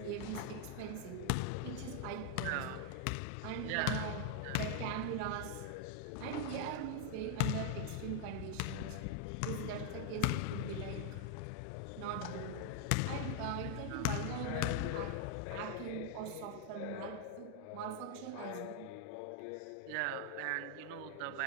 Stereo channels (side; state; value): both; different; correlation 0.00